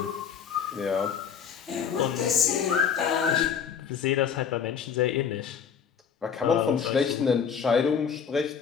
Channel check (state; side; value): quieter; right; 7.2 dB